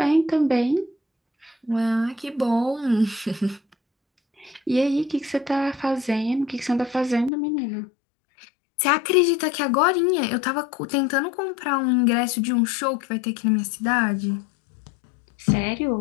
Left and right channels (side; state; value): right; drops out; at 7.3 s